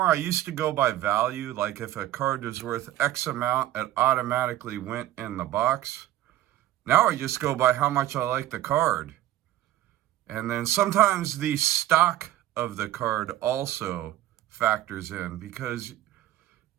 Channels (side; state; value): left; quieter; 14.0 dB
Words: I used to go by value. Like if a card was worth X amount, it automatically went in the box. Now I just go by how much I like the card. And then sometimes the stock of the card also factors in, because